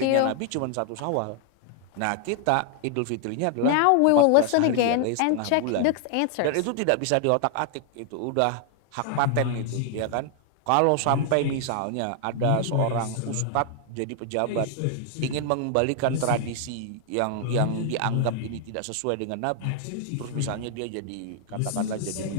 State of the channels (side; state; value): both; different; correlation 0.00